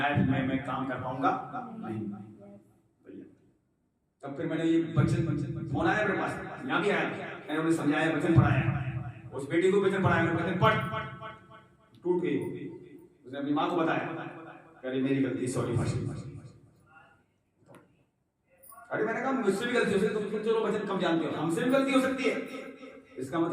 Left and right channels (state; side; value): identical; both; correlation 1.00